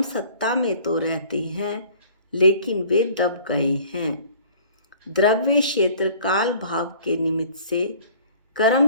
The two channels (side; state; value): both; inverted; correlation -0.51